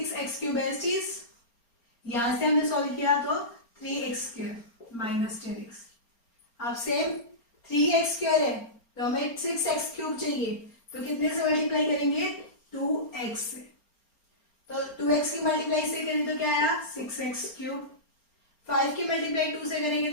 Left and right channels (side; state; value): right; late; 4.3 ms